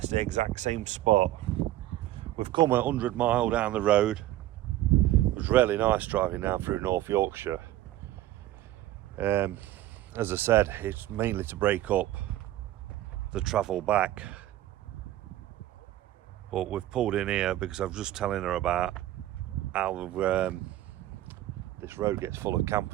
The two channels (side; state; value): left; quieter; 14.4 dB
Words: the exact same spot. We've come 100 miles down the road. It was really nice driving down through North Yorkshire. As I said, it's mainly to break up the travel back, but we've pulled in here because I was just telling her about how this road gets full of